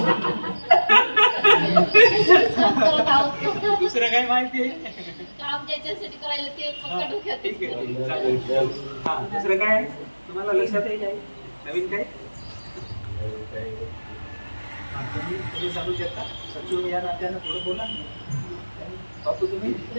दुसरं काय माहिती आहे? काम ज्याच्यासाठी करायला ते फक्त डोक्यात. ठीक आहे, चालेल. दुसरं काय तुम्हाला लक्षात येईल? काय नवीन काय तुम्ही सांगू शकता? सचिव या नात्यानं थोडं बोला. बापू तुम्ही?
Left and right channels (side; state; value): both; inverted; correlation -1.00